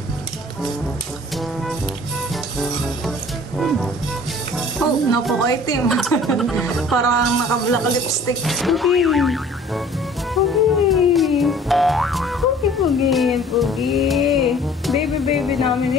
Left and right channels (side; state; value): both; normal; correlation 0.50